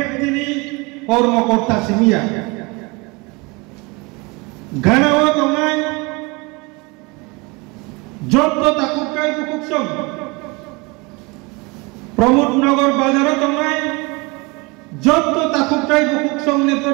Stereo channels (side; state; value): left; quieter; 26.9 dB